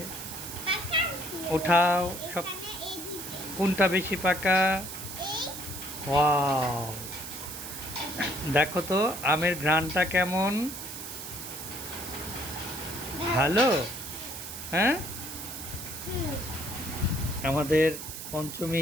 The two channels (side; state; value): right; noise; hiss, 9 dB below the sound